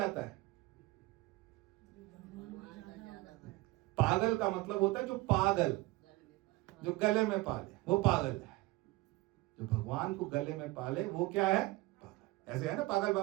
है, पागल का मतलब होता है जो पागल, जो गले में पाले वो पागल है। जो भगवान को गले में पाले वो क्या है, पागल। ऐसे है ना, पागल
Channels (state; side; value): quieter; left; 20.3 dB